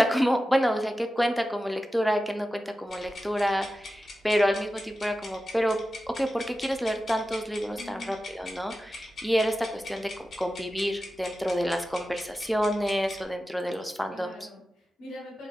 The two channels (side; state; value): both; normal; correlation 0.93